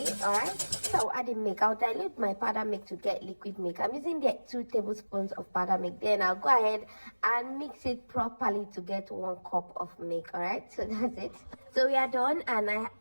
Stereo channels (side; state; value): both; inverted; correlation -1.00